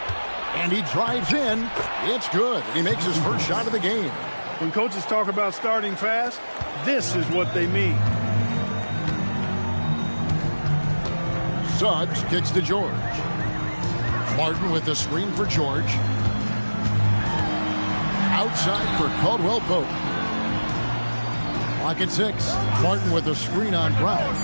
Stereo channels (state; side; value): inverted; both; correlation -1.00